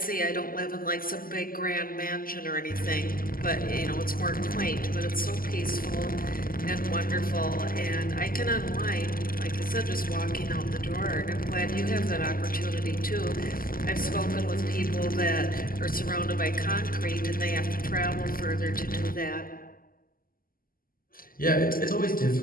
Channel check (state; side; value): late; right; 0.42 ms